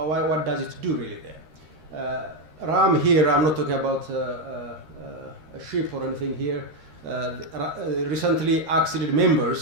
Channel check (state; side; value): late; left; 13 ms